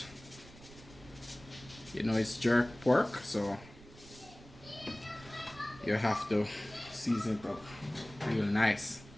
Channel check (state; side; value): noise; right; rumble, 19 dB below the sound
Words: You know, it's jerk pork, so you have to season it up real nice.